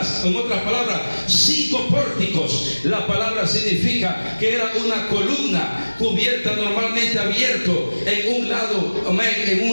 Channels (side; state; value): both; inverted; correlation -1.00